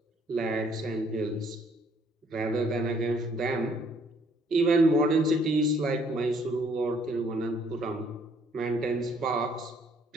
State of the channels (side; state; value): both; normal; correlation 0.64